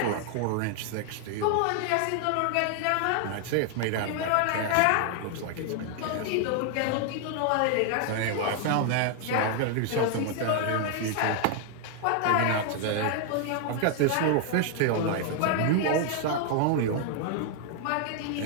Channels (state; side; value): different; both; correlation 0.00